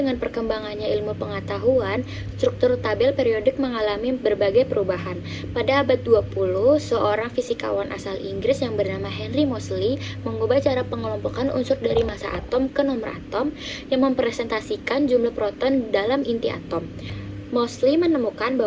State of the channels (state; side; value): identical; both; correlation 1.00